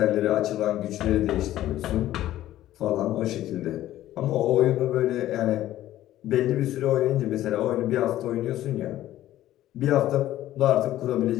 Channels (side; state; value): right; quieter; 13.9 dB